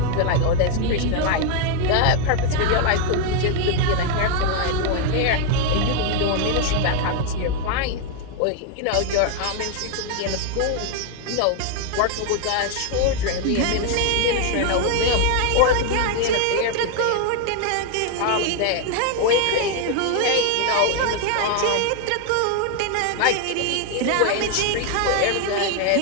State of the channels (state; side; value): different; both; correlation 0.01